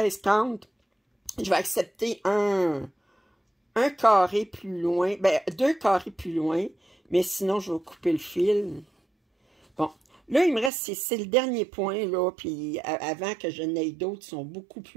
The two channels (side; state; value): left; drops out; at 10.7 s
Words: je vais accepter un carré plus loin, ben, 2 carrés plus loin, mais sinon, je vais couper le fil. Bon, là, il me reste, c'est le dernier point, là, puis avant que je n'aie d'autres, ils sont beaucoup